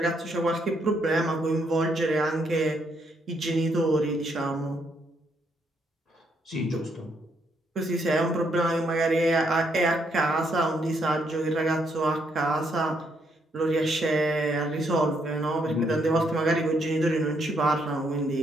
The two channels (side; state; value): both; normal; correlation 0.74